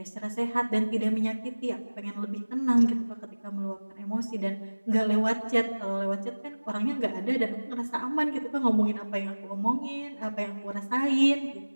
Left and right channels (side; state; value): both; inverted; correlation -1.00